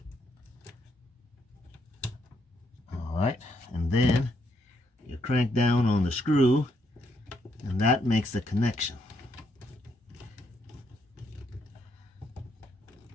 Alright, and then you crank down on the screw, and that makes the connection.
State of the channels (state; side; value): normal; both; correlation 0.75